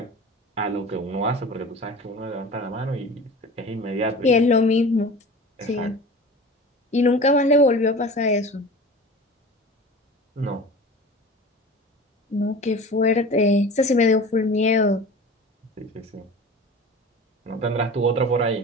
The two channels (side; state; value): both; normal; correlation 0.38